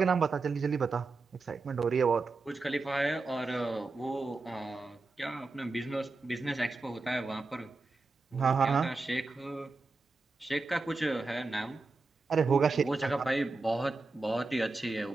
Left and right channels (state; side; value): quieter; left; 3.7 dB